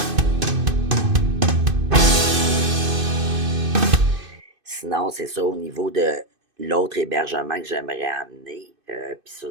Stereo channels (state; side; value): late; left; 2.5 ms